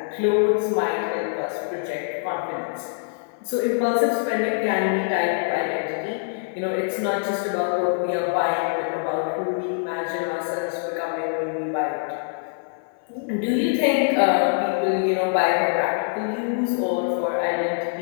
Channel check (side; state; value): right; silent; 56 dB below the other